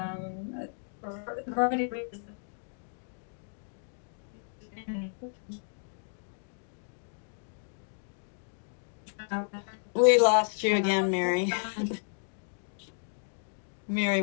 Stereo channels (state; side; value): silent; right; digital silence